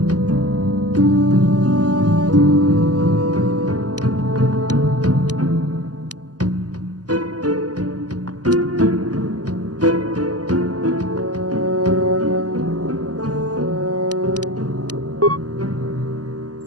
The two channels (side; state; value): left; late; 0.68 ms